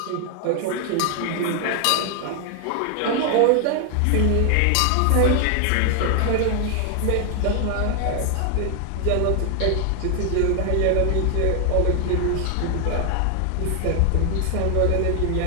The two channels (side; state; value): both; different; correlation 0.00